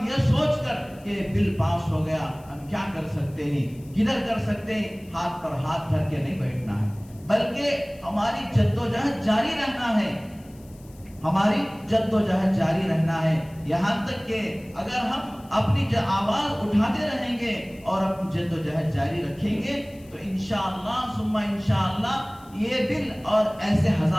یہ سوچ کر کہ بل پاس ہو گیا ہم کیا کر سکتے ہیں، کدھر کر سکتے ہیں، ہاتھ پر ہاتھ دھر کے نہیں بیٹھنا ہے، بلکہ ہماری جدوجہد جاری رہنا ہے، ہماری جدوجہد جاری رہنا ہے، یہاں تک کہ اگر ہم اپنی آواز اٹھاتے رہیں گے اور اپنی جدوجہد جاری رکھیں گے تو انشاءاللہ ثم انشاءاللہ یہ بل اور ایسے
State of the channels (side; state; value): left; noise; hiss, 27 dB below the sound